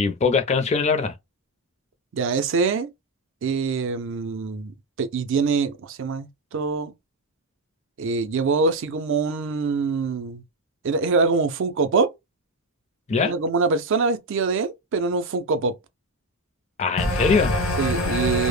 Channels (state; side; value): normal; both; correlation 0.10